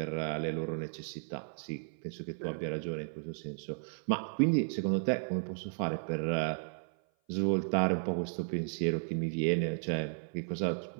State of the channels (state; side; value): silent; left; 55 dB below the other